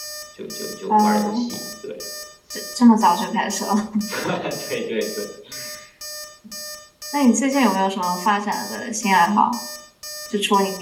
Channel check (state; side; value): identical; both; correlation 1.00